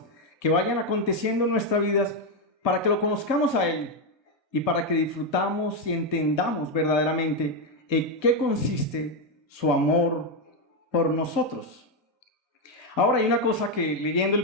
que vayan aconteciendo en nuestras vidas para que lo conozcamos a Él y para que disfrutamos y entendamos verdaderamente en qué consiste su amor por nosotros. Ahora hay una cosa que leyendo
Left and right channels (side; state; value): both; normal; correlation 0.05